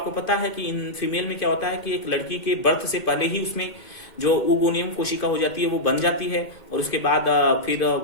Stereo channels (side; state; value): right; late; 2.5 ms